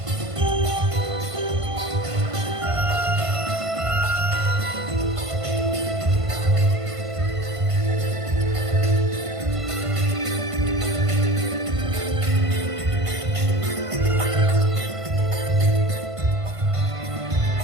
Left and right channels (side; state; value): left; late; 1.5 ms